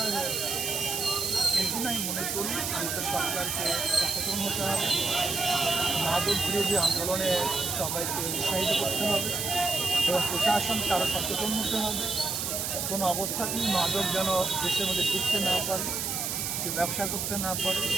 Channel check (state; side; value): noise; right; hiss, 2 dB below the sound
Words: হয়ে যায়। এই জন্য আমি মনে করি আমাদের সরকারকে সচেতন হতে হবে, মাদক বিরোধী আন্দোলনে সবাইকে উৎসাহিত করতে হবে এবং প্রশাসনকে আরও সচেতন হতে হবে। কোনো অবস্থাতেই মাদক যেন দেশের মধ্যে ঢুকতে না পারে, ব্যবসা করতে না পারে,